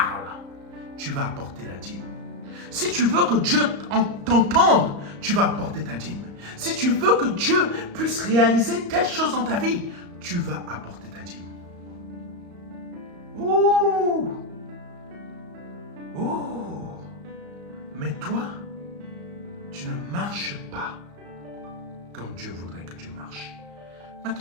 tu vas apporter la dîme. Si tu veux que Dieu t'entende, tu vas apporter ta dîme. Si tu veux que Dieu puisse réaliser telle chose dans ta vie, tu vas apporter ta dîme. Ouh! Oh! Mais toi, tu ne marches pas comme Dieu voudrait que tu marches.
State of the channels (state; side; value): late; left; 34 ms